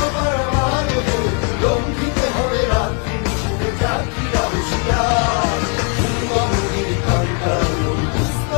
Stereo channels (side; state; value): right; quieter; 36.9 dB